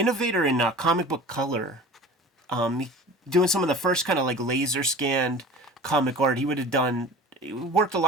in comic book color, doing some of the first kind of like laser scanned comic art. He worked a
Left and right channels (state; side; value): normal; both; correlation 0.40